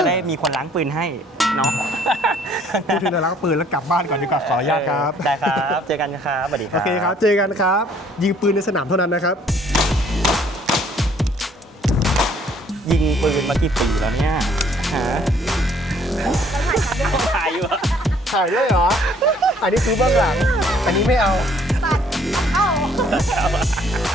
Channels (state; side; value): normal; both; correlation 0.60